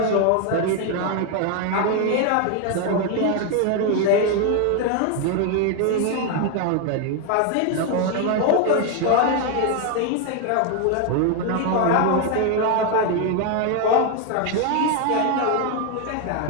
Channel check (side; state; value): both; different; correlation 0.01